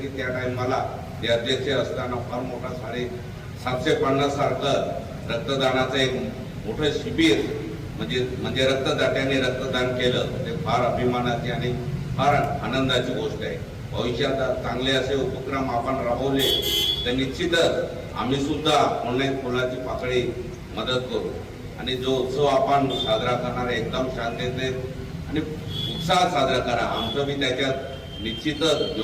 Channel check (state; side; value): identical; both; correlation 1.00